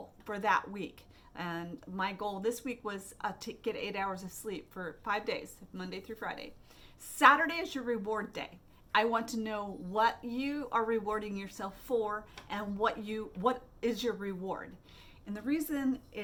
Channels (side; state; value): both; identical; correlation 1.00